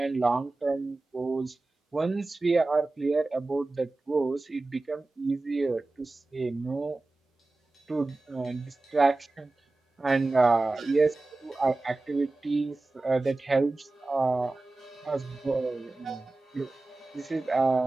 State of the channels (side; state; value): left; quieter; 3.2 dB